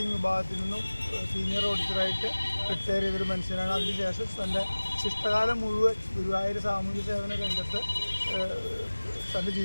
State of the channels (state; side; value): inverted; both; correlation -1.00